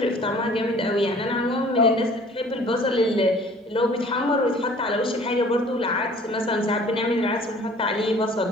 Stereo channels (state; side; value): normal; both; correlation 0.51